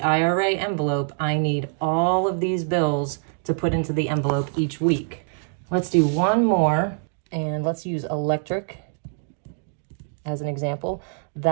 IRA envelope, I need all of these bills to put into the envelope each week. Let's do one more, and let's use electric as an example.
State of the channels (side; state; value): left; silent; 62 dB below the other